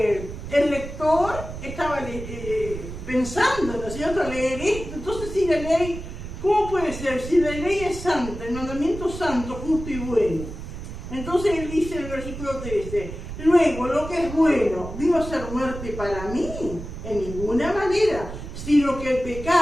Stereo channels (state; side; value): noise; right; rumble, 10 dB below the sound